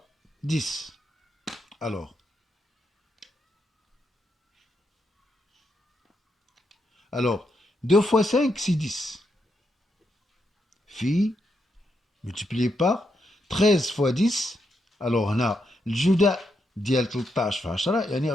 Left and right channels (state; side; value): normal; both; correlation 0.81